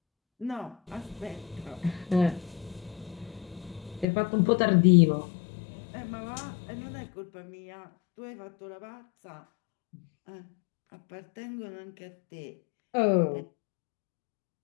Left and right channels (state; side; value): drops out; right; at 4.0 s